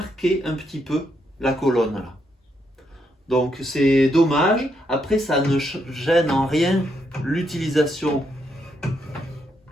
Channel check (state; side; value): normal; both; correlation 0.77